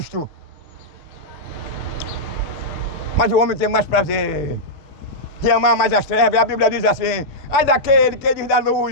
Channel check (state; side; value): late; right; 6.8 ms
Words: Mas o homem tem mais prazer de amar mais as trevas. A Bíblia diz assim: ai daquele que diz da